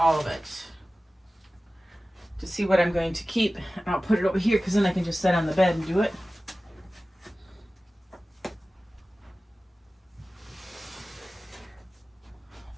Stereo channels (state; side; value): normal; both; correlation 0.96